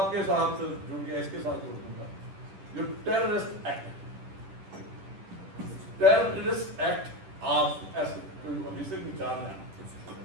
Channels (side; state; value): left; late; 10 ms